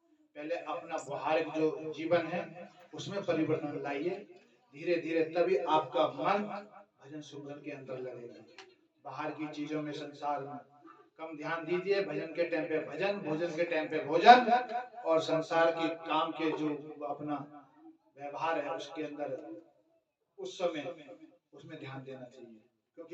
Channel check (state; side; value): identical; both; correlation 1.00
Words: पहले अपना व्यवहारिक जो जीवन है उसमें परिवर्तन लाइए, धीरे धीरे तभी आपका मन भजन सुमरन के अंदर लगेगा। बाहर की चीजों में, संसार में कम ध्यान दीजिए। भजन के टाइम पे भजन, भोजन के टाइम पे भोजन, और संसार की काम के जो अपना व्यवहार है उसके अंदर उस समय उसमें ध्यान देना चाहिए,